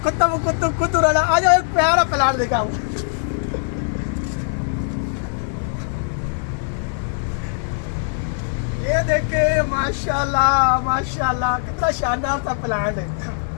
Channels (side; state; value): right; silent; digital silence